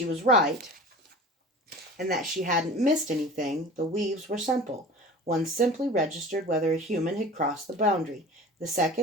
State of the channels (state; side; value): normal; both; correlation 0.38